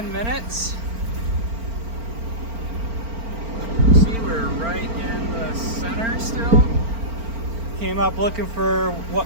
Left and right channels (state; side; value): late; left; 4.4 ms